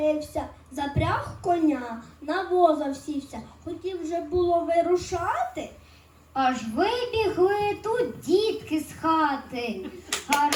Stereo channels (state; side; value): identical; both; correlation 1.00